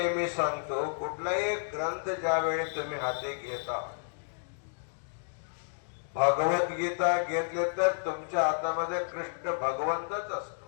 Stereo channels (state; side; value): silent; right; digital silence